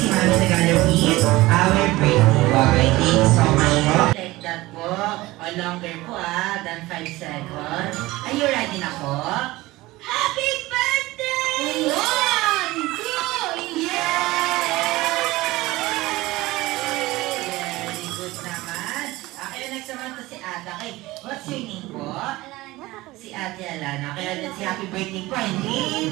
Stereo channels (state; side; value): quieter; left; 19.3 dB